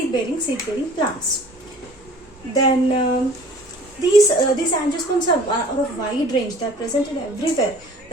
plants. Then these angiosperms are of wide range. They are present in everywhere.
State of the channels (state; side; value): normal; both; correlation 0.49